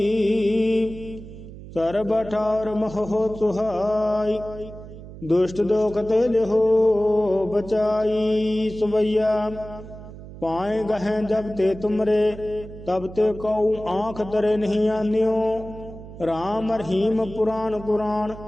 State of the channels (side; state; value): right; noise; hum, 15 dB below the sound